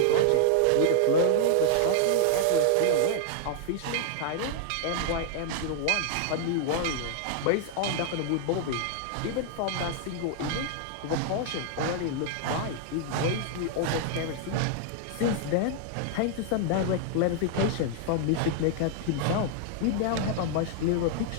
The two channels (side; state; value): both; different; correlation -0.01